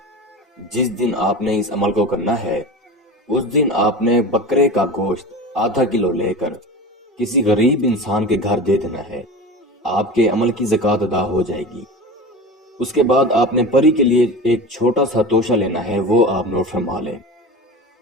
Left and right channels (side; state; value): both; normal; correlation 0.30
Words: जिस दिन आपने इस अमल को करना है, उस दिन आपने बकरे का गोश्त आधा किलो लेकर किसी गरीब इंसान के घर दे देना है। आपके अमल की ज़कात अदा हो जाएगी। उसके बाद आपने परी के लिए एक छोटा सा तोशा लेना है, वो आप नोट फरमा लें।